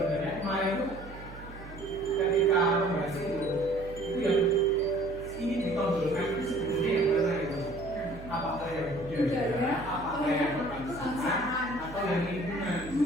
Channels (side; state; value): right; noise; hum, 15 dB below the sound